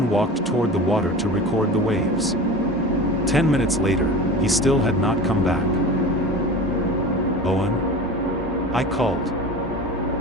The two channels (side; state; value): both; normal; correlation 0.33